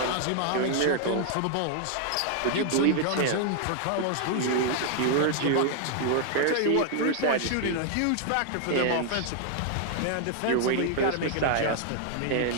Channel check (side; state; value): both; different; correlation 0.00